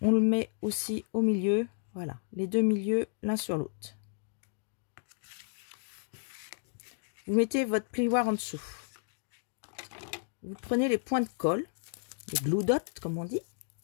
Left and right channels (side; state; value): right; silent; digital silence